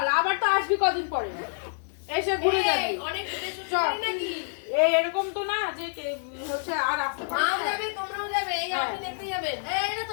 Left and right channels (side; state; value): right; silent; digital silence